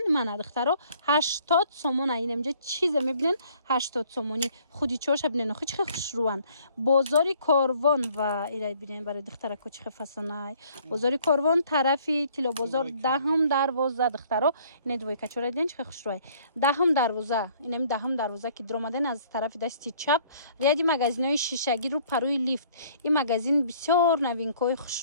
من دخترو 80 سومون این اینجا چیز میبینن 80 سومونی خودی چوش ببینن خو چه خوش روان بازاری کاروان و ایرای ببینن برای دخترکو چه فسانای بازاری کاروان طرفی تیلو بازار دهم دروازه دخترو این دوی کچوره دیدن چه خوش روای دهم دروازه اینم دهم دروازه که در اومدن از طرف دست چپ ریادی مگزینای شیشگی رو پروی لیفت. این مگزین بسیار نوینکای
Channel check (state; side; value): inverted; both; correlation -0.59